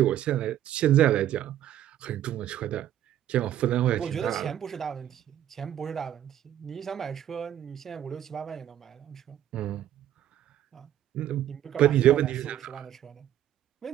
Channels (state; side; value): quieter; left; 11.7 dB